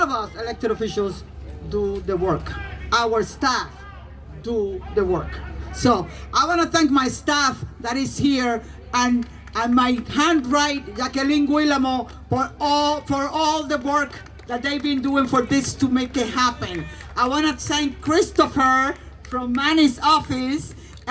us elected officials do the work. Our staff do the work. So I want to thank my staff that is here and my handwrite, Jacqueline Guillermo, for all the work that they've been doing for this to make it happen. I want to thank Christopher from Manny's office,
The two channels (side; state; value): both; identical; correlation 1.00